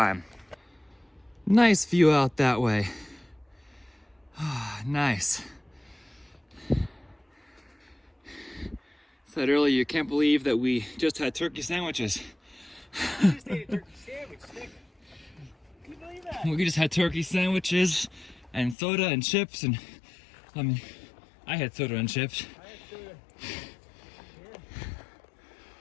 Nice view out that way. Ah, nice. Said earlier, you can't believe that we just had turkey sandwiches. You just ate a turkey sandwich, Nick. Can you believe that? We just had turkey sandwiches and soda and chips, and I mean, I had soda and chips.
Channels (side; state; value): right; drops out; at 18.8 s